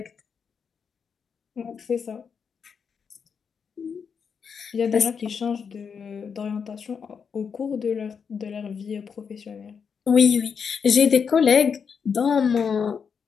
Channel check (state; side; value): quieter; right; 6.4 dB